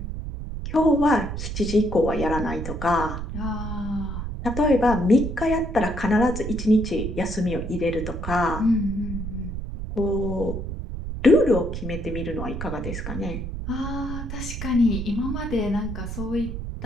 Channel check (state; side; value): noise; right; rumble, 6 dB below the sound